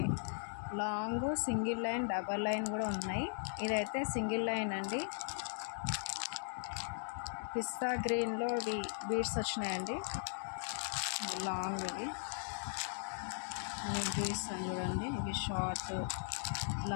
long, single line, double line కూడా ఉన్నాయి. ఇదైతే సింగిల్ లైన్ అండి. పిస్తా గ్రీన్లో బీడ్స్ వచ్చినాయండి, లాంగ్. ఇవి మీకు చూపిస్తాను చూడండి. ఇవి షార్ట్,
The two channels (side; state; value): right; silent; digital silence